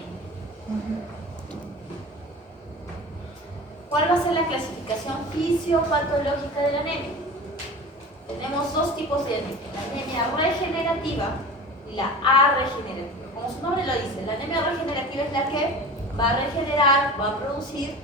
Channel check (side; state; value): both; normal; correlation 0.36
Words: ¿Cuál va a ser la clasificación fisiopatológica de la anemia? Tenemos dos tipos de anemia, la anemia regenerativa y la arregenerativa. Como su nombre lo dice, la anemia regenerativa es la que va a regenerar, va a producir